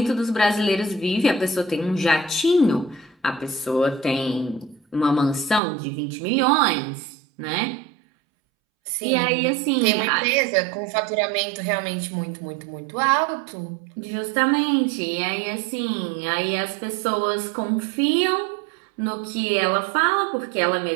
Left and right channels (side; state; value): left; drops out; at 5.6 s